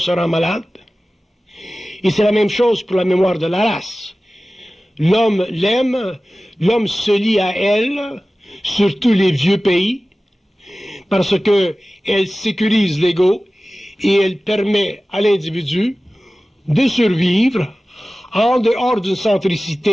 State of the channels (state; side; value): normal; both; correlation 0.96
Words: rend malade. Et c'est la même chose pour la mémoire de la race. L'homme l'aime, l'homme se lie à elle, surtout les vieux pays, parce qu'elle sécurise l'ego et elle permet à l'individu de survivre en dehors d'une